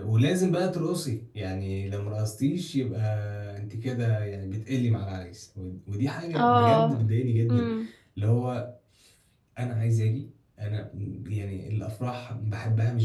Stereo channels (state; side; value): identical; both; correlation 1.00